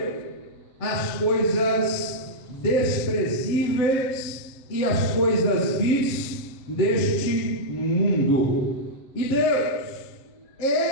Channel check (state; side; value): late; right; 7.9 ms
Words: as coisas desprezíveis e as coisas vis deste mundo. E Deus